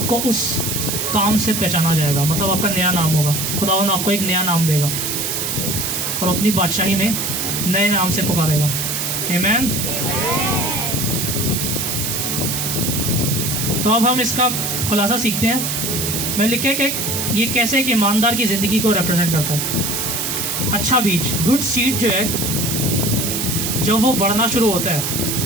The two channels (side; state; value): right; noise; hiss, 1 dB below the sound